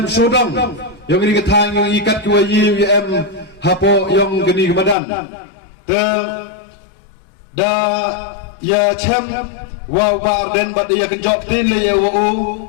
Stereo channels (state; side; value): drops out; right; at 5.0 s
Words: sodong yang gini ketang yang ikat ki wa ya em hapo yang gini kebadan te da ya cem wa bar den bat ya kenjop tin le ya wa